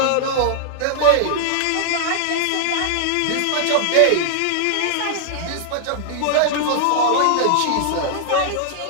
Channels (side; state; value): both; different; correlation -0.01